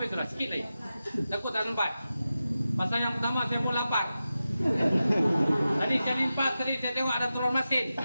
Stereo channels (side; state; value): both; inverted; correlation -0.93